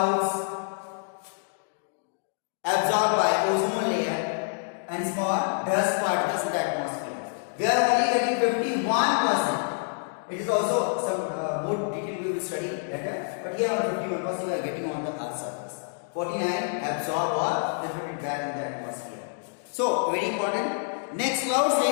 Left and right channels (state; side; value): silent; right; digital silence